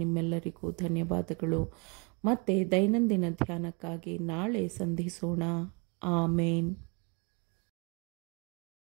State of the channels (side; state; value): left; quieter; 32.0 dB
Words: ಧನ್ಯವಾದಗಳು. ಮತ್ತೆ ದೈನಂದಿನ ಧ್ಯಾನಕ್ಕಾಗಿ ನಾಳೆ ಸಂಧಿಸೋಣ. ಆಮೇನ್.